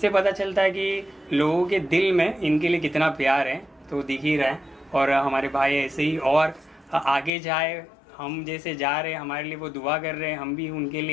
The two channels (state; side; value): drops out; right; at 7.3 s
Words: पता चलता है कि लोगों के दिल में इनके लिए कितना प्यार है, तो दिख ही रहा है। और हमारे भाई ऐसे ही और आगे जाए, हम जैसे जा रहे हैं हमारे लिए वो दुआ कर रहे हैं, हम भी उनके